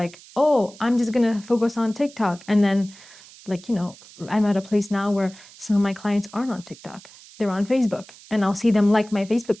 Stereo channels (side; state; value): right; noise; hiss, 21 dB below the sound